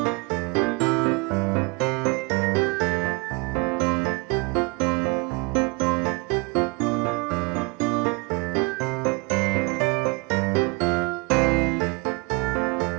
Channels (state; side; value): quieter; left; 27.9 dB